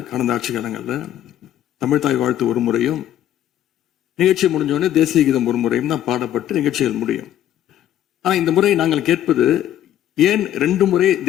ஆட்சி காலங்களில் தமிழ்தாய் வாழ்த்து ஒரு முறையும் நிகழ்ச்சி முடிஞ்சோடனே தேசிய கீதம் ஒரு முறையும் தான் பாடப்பட்டு நிகழ்ச்சிகள் முடியும். ஆனா இந்த முறை நாங்கள் கேட்பது ஏன் 2 முறை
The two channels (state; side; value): quieter; right; 11.5 dB